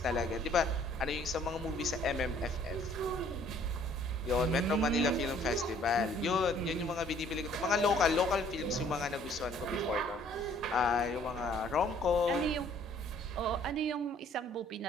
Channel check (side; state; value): both; normal; correlation 0.58